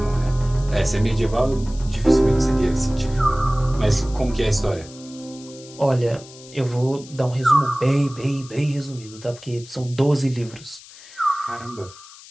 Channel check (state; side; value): noise; left; hiss, 20 dB below the sound